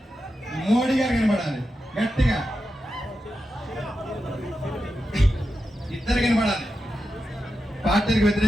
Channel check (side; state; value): both; normal; correlation 0.89